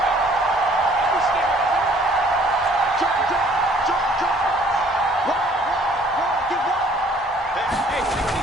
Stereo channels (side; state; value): both; normal; correlation 0.58